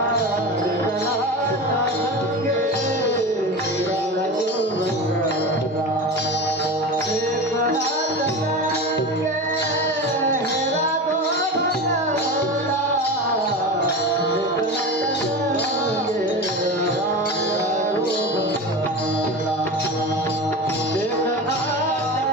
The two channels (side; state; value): both; normal; correlation 0.28